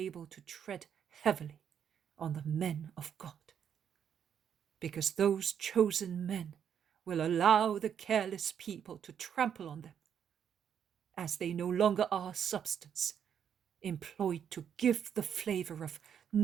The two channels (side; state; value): left; quieter; 8.4 dB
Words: to tread heavily on the men of God? Because those chosen men will allow the careless people to trample on them, as they no longer are substance, employed to give the flavor of